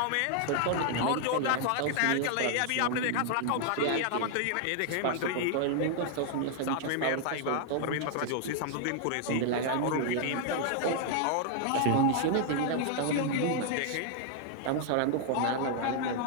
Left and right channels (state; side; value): different; both; correlation 0.00